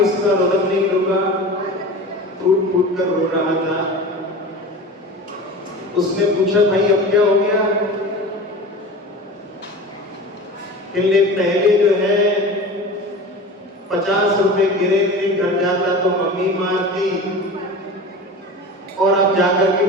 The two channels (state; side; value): normal; both; correlation 0.34